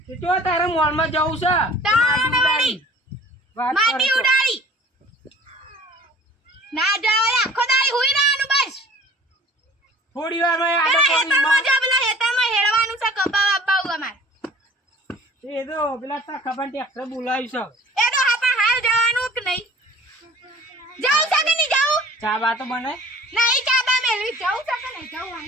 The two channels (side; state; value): both; normal; correlation 0.49